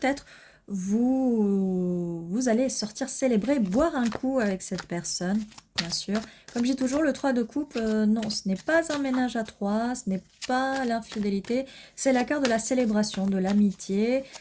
vous allez sortir célébrer, boire un coup avec cette personne, bien sûr. Comme je dis toujours, le 3 de coupe, non, ce n'est pas un ménage à 3, ce n'est pas l'infidélité, c'est la carte de la célébration, de l'amitié.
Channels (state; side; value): identical; both; correlation 1.00